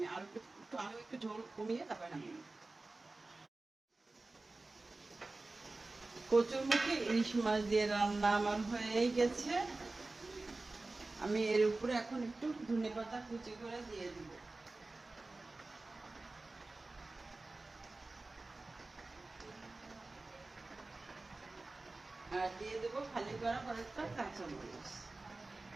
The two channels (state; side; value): quieter; left; 3.2 dB